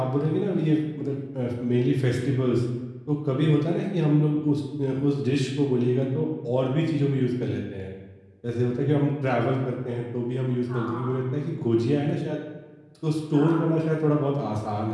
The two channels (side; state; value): both; identical; correlation 1.00